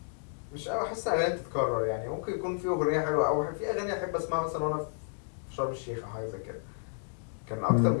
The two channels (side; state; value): right; silent; digital silence